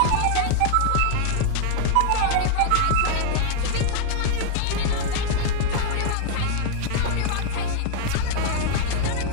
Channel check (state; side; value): different; both; correlation 0.00